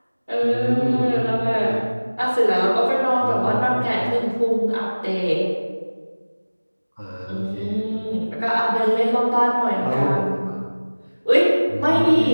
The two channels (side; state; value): both; inverted; correlation -1.00